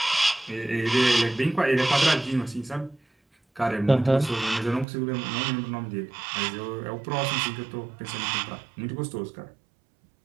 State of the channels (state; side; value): drops out; left; at 4.9 s